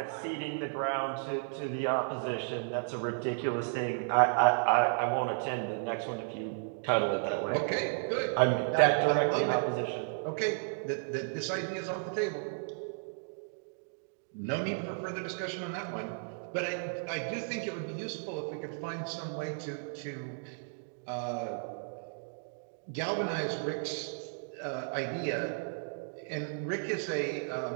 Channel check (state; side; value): silent; left; digital silence